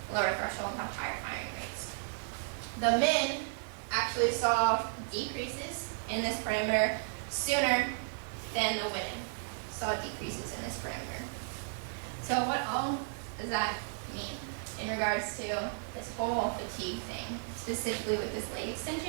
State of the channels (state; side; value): silent; left; digital silence